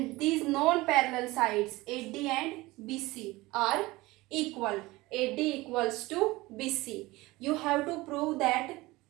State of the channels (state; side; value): quieter; left; 20.4 dB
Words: these non-parallel sides, AD and BC, are equal. AD equals to BC. You have to prove that